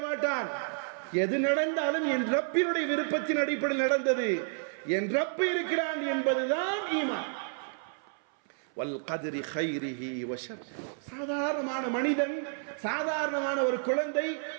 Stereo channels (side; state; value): left; silent; 57 dB below the other